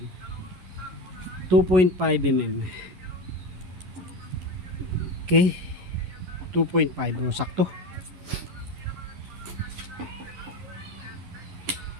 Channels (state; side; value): late; left; 11 ms